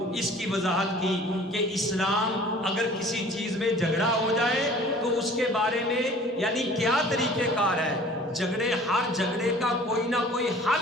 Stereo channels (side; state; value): both; normal; correlation 0.48